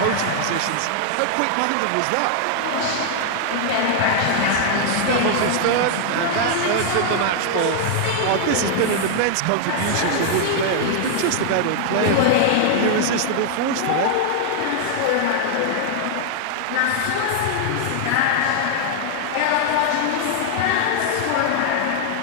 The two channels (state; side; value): different; both; correlation 0.00